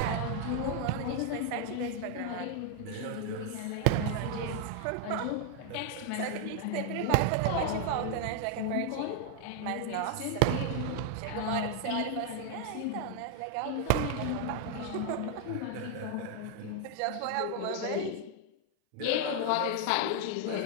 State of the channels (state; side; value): different; both; correlation 0.00